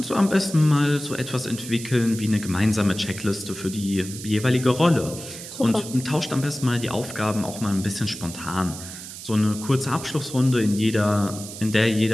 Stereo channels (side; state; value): right; noise; hiss, 12 dB below the sound